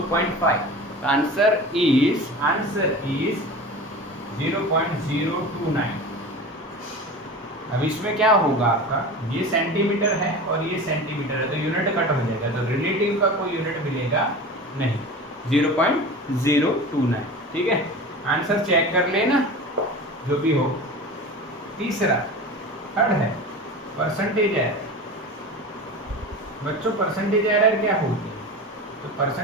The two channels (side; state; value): both; normal; correlation 0.33